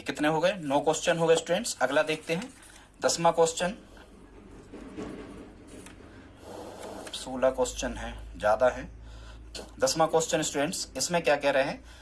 कितने हो गए, 9 क्वेश्चन हो गए स्टूडेंट्स। अगला देखते हैं 10वां क्वेश्चन। 16 क्वेश्चन है, ज्यादा है। 10वां क्वेश्चन स्टूडेंट्स, इसमें क्या कह रहे हैं,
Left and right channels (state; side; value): identical; both; correlation 1.00